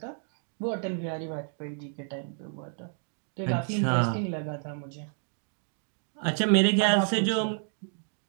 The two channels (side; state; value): left; silent; 58 dB below the other